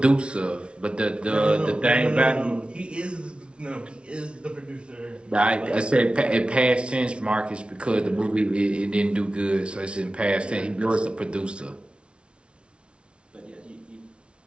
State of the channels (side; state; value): left; late; 0.058 ms